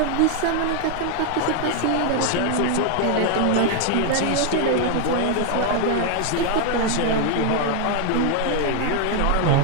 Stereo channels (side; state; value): both; different; correlation 0.00